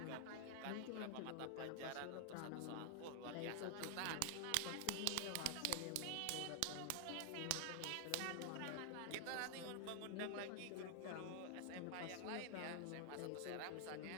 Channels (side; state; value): both; different; correlation 0.00